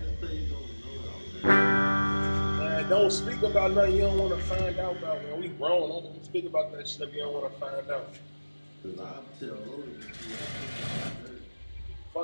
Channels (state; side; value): inverted; both; correlation -1.00